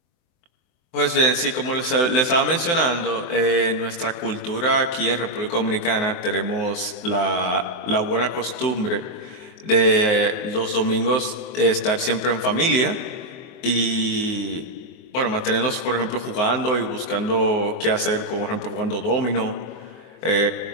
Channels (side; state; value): right; late; 23 ms